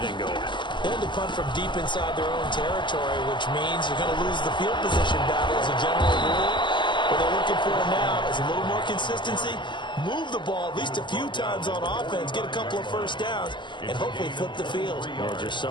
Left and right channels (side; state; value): right; late; 0.22 ms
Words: going. They had to punt from deep inside their own territory, which means you're going to lose the field position battle as a general rule. What they're looking for now is a little more consistency, move the ball at least a few times on offense, get a couple of first downs, and hopefully flip the field. Yeah, just